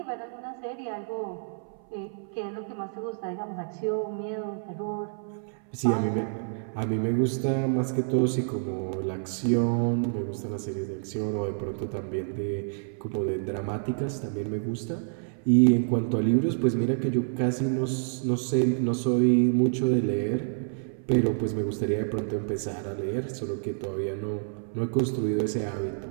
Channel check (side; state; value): left; silent; 59 dB below the other